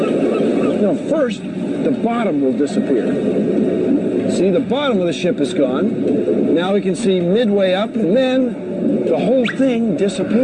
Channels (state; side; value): identical; both; correlation 1.00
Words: first, the bottom will disappear. See, the bottom of the ship is gone. Now we can see midway up, and then the whole thing